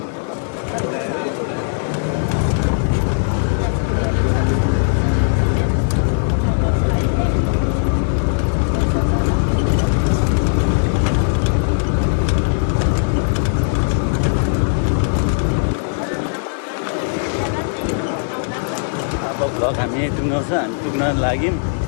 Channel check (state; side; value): silent; right; 56 dB below the other